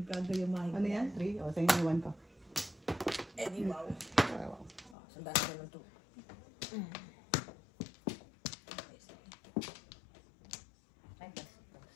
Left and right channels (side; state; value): right; drops out; at 5.0 s